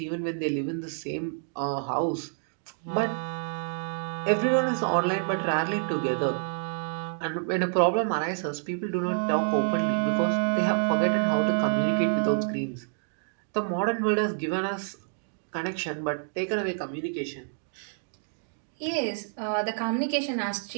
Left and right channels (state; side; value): silent; left; 59 dB below the other